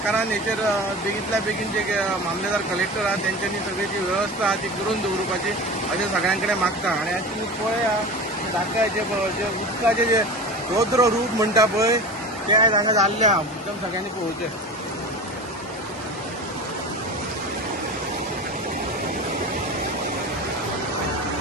हेचेर बेगींतल्या बेगीन जे मामलेदार कलेक्टर आहात त्यांच्यानी सगळी जी व्यवस्था आहा ती करून दवरपाची अशें सगळ्यां कडेन मागता। आनी आयज तुमी पळया धाकट्याचे जे उदकाचे जे रौद्र रूप म्हणटा पळय ते आयज हांगा जाल्ले आहा, एकदम सगळ्यांनी पळोवचें।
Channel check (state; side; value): normal; both; correlation 0.31